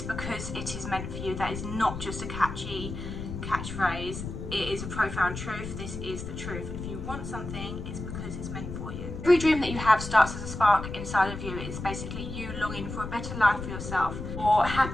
because it is meant for you. That is not just a catchy catchphrase. It is a profound truth. This is the truth. If you want something, it's because it's meant for you. Every dream that you have starts as a spark inside of you. It's basically you longing for a better life for yourself, or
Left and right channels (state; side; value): noise; left; rumble, 7 dB below the sound